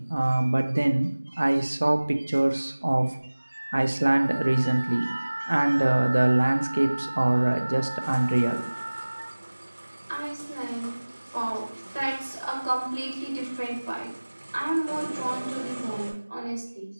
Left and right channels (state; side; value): inverted; both; correlation -1.00